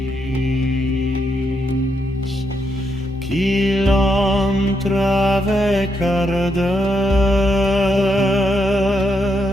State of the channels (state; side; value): normal; both; correlation 0.80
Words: qu'il entre avec ardeur